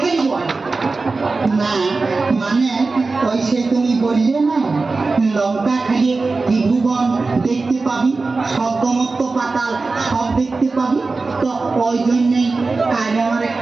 দিব না মানে ওই সে তুমি বললে না লঙ্কা খাইয়ে ত্রিভুবন দেখতে পাবি স্বর্গমত্ত পাতাল সব দেখতে পাবি তো ওই জন্যই আজ আমার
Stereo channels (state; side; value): quieter; left; 3.8 dB